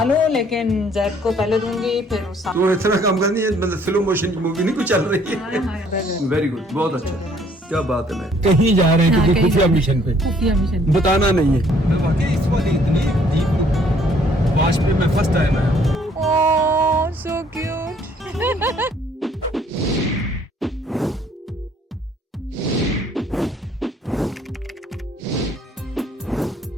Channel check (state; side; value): normal; both; correlation 0.62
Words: लूं, लेकिन जैद को पहले दूंगी फिर उस तो इतना काम करनी है, मतलब स्लो मोशन की मूवी नहीं कुछ चल रही है। वेरी गुड, बहुत अच्छा, क्या बात है। मैं कहीं जा रहे हैं, किसी खुफिया मिशन पे, खुफिया मिशन बताना नहीं है। वाकई इस वाली इतनी डीप वाश पे मैं फर्स्ट टाइम आया। ओह सो क्यूट।